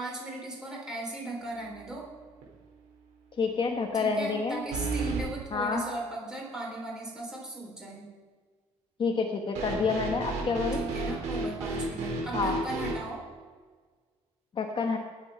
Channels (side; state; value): both; normal; correlation 0.56